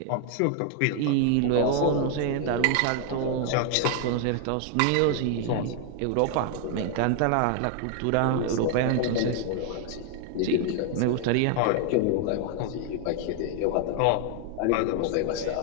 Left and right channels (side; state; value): both; different; correlation 0.00